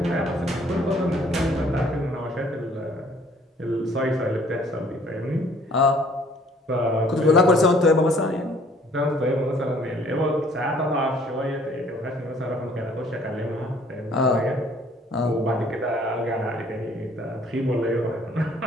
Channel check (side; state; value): both; normal; correlation 0.58